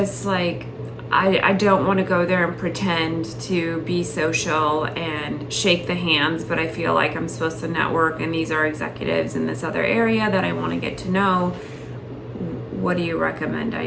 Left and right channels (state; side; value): identical; both; correlation 1.00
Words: like, I don't want to go there and pretend to be social and shake the hands, but I feel like I'm supposed to network, and these are executives in this other area that I want to get to know. What do you recommend I